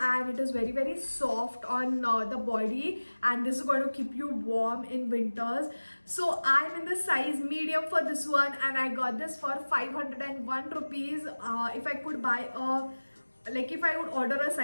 it is very soft on the body, and this is going to keep you warm in winters. So I'm in the size medium for this one and I got this for 501 rupees. If I could buy a if I would order a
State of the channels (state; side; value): inverted; both; correlation -1.00